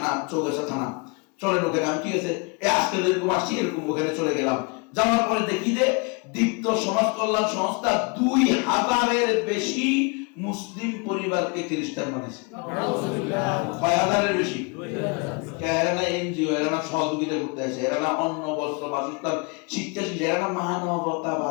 চৌগাছা থানা। চলেন ওখানে। আমি ঠিক আছে, আজকে এরকম আসছি, এরকম ওখানে চলে গেলাম। যাওয়ার পরে দেখি যে দীপ্ত সমাজ কল্যাণ সংস্থা 2000-এর বেশি মুসলিম পরিবারকে খ্রিস্টান বানিয়েছে। 2000-এর বেশি। এরা না এনজিও, এরা না সহযোগিতা করতে আসে, এরা না অন্ন বস্ত্র বাসস্থান শিক্ষা শিক্ষা, এরা না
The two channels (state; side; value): quieter; right; 31.7 dB